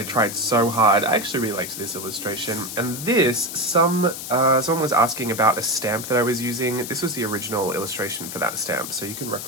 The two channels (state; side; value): noise; left; hiss, 8 dB below the sound